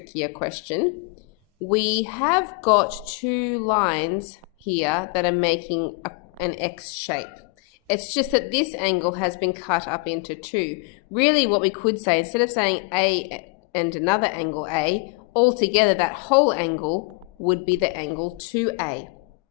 question. We have got two lines here that are making an X shape. It's just that this angle has been cut up into two. Really what we could say, instead of saying A and another angle A, altogether that whole angle would be the angle 2A.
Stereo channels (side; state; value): right; quieter; 28.0 dB